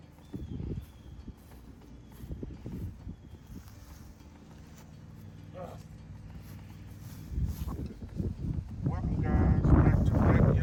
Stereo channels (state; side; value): identical; both; correlation 1.00